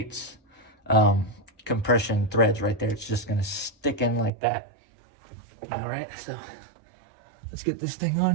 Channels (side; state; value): left; drops out; at 4.3 s